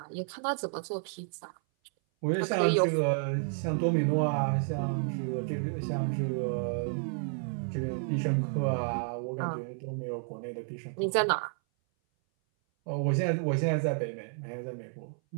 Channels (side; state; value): left; silent; 57 dB below the other